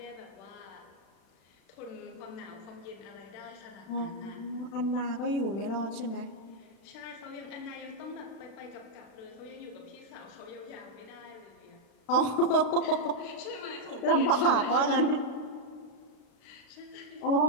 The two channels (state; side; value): late; right; 36 ms